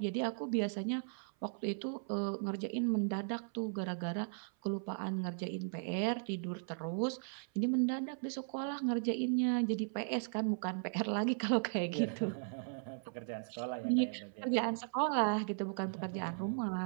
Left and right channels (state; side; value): silent; left; 53 dB below the other